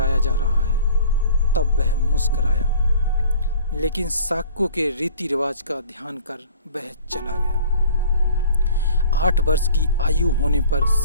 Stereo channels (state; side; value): inverted; both; correlation -0.48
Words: जा रहा है तब वह मुस्कुराया, लेकिन शाक्यों के रीति रिवाज का ध्यान कर वह चला गया। 8 वर्ष की आयु होने पर